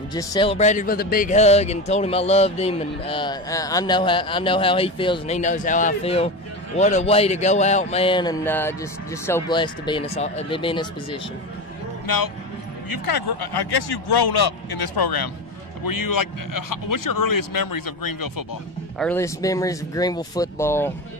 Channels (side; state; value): both; normal; correlation 0.22